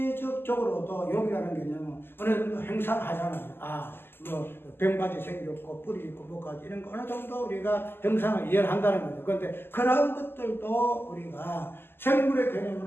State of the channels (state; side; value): late; right; 0.11 ms